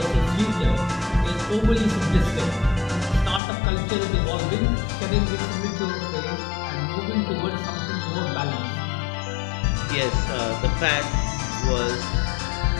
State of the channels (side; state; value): right; drops out; at 3.4 s